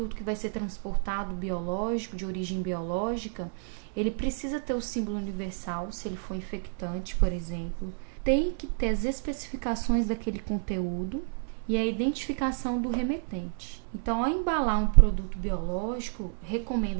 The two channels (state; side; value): silent; left; 58 dB below the other